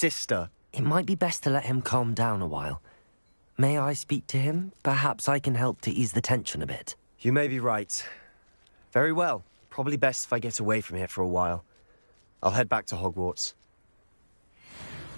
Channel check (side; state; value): both; inverted; correlation -1.00